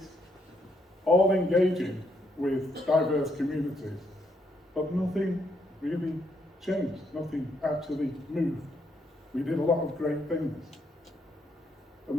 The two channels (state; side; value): normal; both; correlation 0.75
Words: all engaging with diverse communities. But nothing really changed, nothing actually moved. We did a lot of great things. And